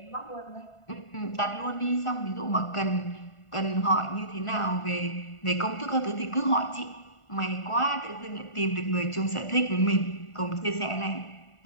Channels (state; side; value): late; right; 1.5 ms